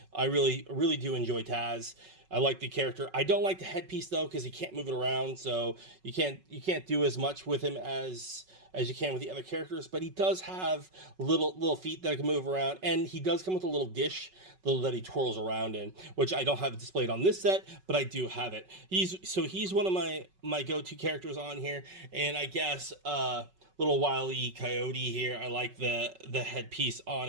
I really do enjoy Taz. I like the character. I don't like the headpiece though, because he can't move it around, so you can't do as much with him as you can with the other characters. But he does have little feet that can move around, and he does come with a little dish that he twirls around in, which I don't have displayed on this set, but I do have it. He's one of my go-to characters on here, and I guess little Wile E Coyote here. I like the headpiece on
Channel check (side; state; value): left; late; 5.3 ms